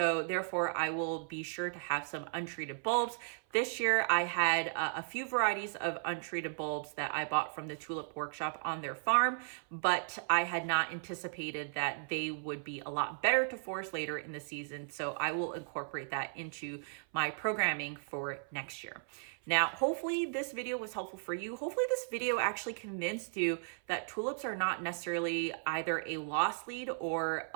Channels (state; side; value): silent; left; 54 dB below the other